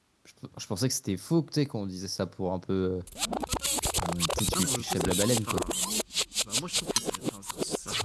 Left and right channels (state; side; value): identical; both; correlation 1.00